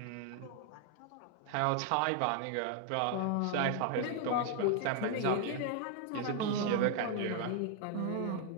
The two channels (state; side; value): different; both; correlation 0.00